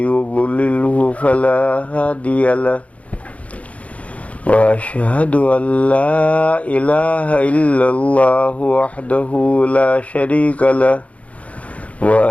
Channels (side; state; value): right; late; 0.066 ms